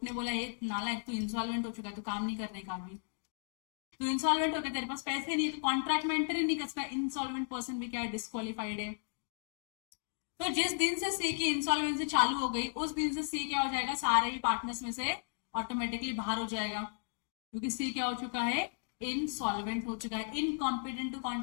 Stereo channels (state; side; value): silent; right; digital silence